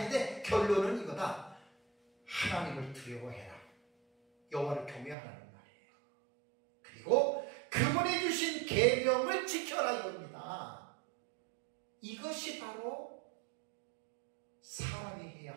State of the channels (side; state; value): left; drops out; at 5.2 s